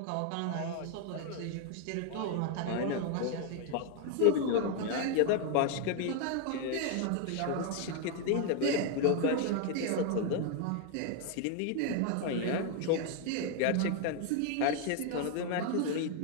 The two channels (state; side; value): different; both; correlation 0.00